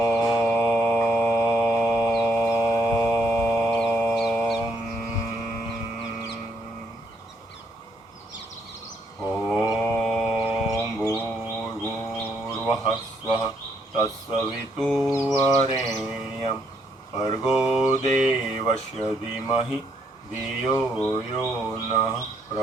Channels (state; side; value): normal; both; correlation 0.73